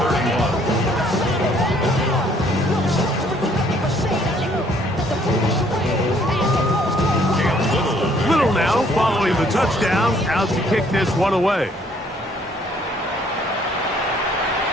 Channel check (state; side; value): normal; both; correlation 0.63